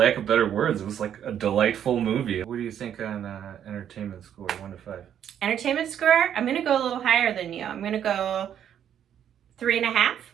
of better words, it was like a delightful movie. What do you think on entertainment score, 1 to 5? Entertainment score, I'm gonna go a little higher than you. I'm gonna go 3.5.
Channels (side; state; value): left; quieter; 9.6 dB